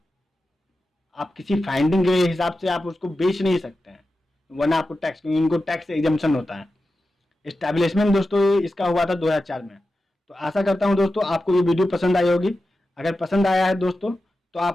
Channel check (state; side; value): normal; both; correlation 0.92